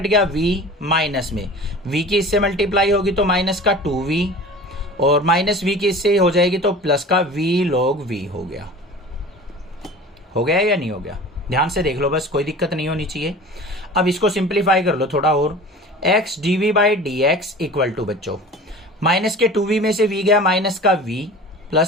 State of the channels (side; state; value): both; normal; correlation 0.39